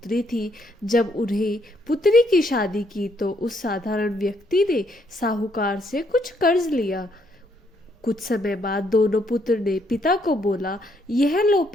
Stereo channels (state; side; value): normal; both; correlation 0.72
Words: थी। जब उन्हें पुत्री की शादी की तो उस साधारण व्यक्ति ने साहूकार से कुछ कर्ज लिया। कुछ समय बाद दोनों पुत्र ने पिता को बोला, यह लो